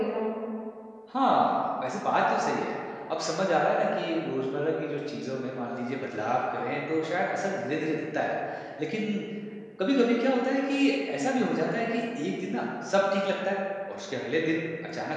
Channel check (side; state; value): both; identical; correlation 1.00